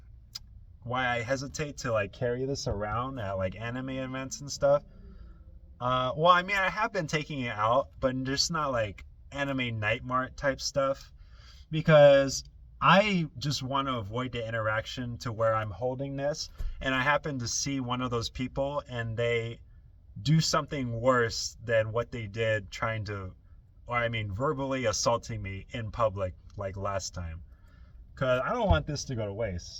why I hesitate to like carry this around at like anime events and stuff. Well, I mean, I have been taking it out, but just not like anime night mart type stuff, because I just want to avoid the interaction to where I'm holding this and I happen to see one of those people and they do something worse than what they did trying to, or I mean verbally assaulting me in public like last time. Because I don't want this to go to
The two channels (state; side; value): identical; both; correlation 1.00